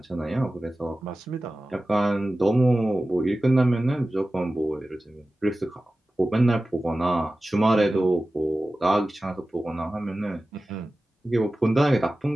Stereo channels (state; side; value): normal; both; correlation 0.96